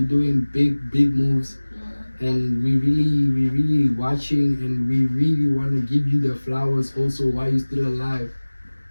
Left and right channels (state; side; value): inverted; both; correlation -1.00